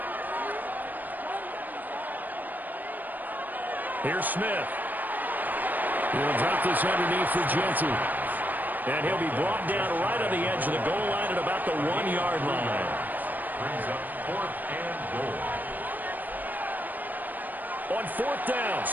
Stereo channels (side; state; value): left; late; 0.086 ms